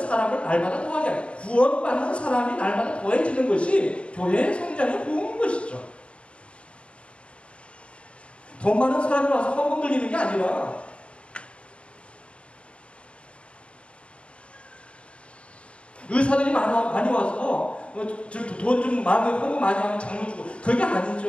날마다 더하게 하라. 구원받는 사람이 날마다 더해지는 것이 교회의 성장의 부흥인 것이죠. 더 많은 사람이 와서 헌금 들리는 게 아니라 의사들이 많이 와서 돈 좀 많이 헌금 많이 하면 장로 주고 그게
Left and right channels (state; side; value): late; right; 0.059 ms